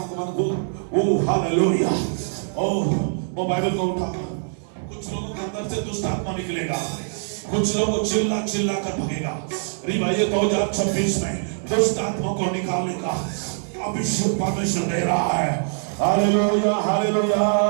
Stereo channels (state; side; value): silent; left; digital silence